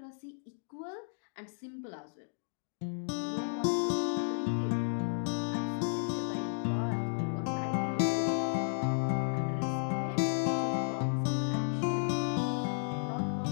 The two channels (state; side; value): silent; right; digital silence